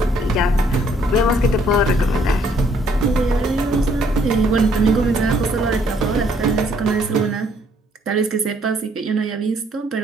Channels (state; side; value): normal; both; correlation 0.66